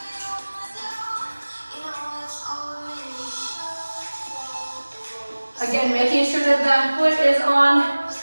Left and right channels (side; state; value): both; inverted; correlation -1.00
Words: Again, making sure that that foot is on